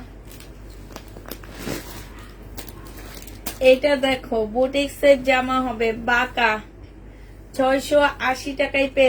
এটা দেখো বুটিক্সের জামা হবে, বাঁকা 680 টাকায়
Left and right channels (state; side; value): identical; both; correlation 1.00